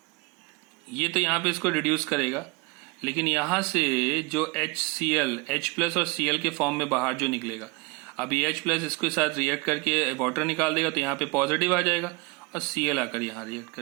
ये तो यहाँ पे इसको रिड्यूस करेगा, लेकिन यहां से जो HCl, H प्लस और Cl के फॉर्म में बाहर जो निकलेगा, अब ये H प्लस इसके साथ रिएक्ट करके वाटर निकाल देगा, तो यहाँ पे पॉजिटिव आ जाएगा और Cl आकर यहाँ रिएक्ट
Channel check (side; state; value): left; quieter; 26.4 dB